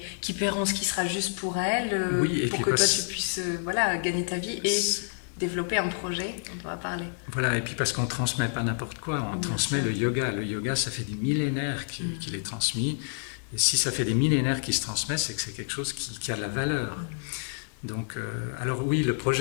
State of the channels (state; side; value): silent; right; digital silence